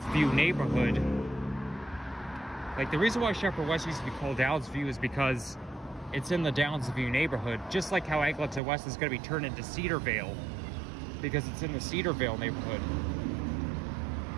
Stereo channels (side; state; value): left; drops out; at 8.6 s